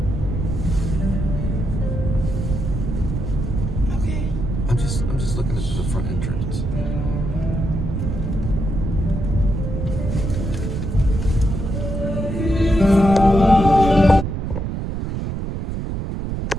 Okay. I'm just looking at the front entrance.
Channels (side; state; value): right; noise; rumble, 3 dB below the sound